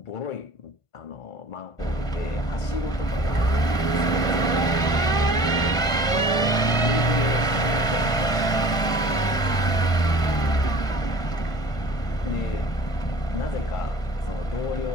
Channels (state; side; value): late; right; 1.5 ms